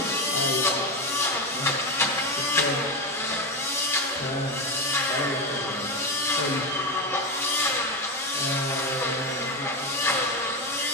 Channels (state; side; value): normal; both; correlation 0.14